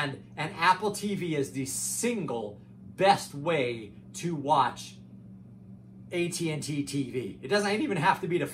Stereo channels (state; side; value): identical; both; correlation 1.00